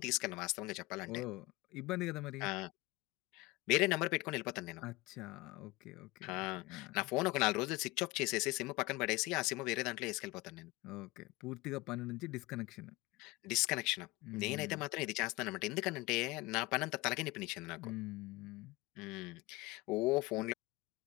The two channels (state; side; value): quieter; right; 22.2 dB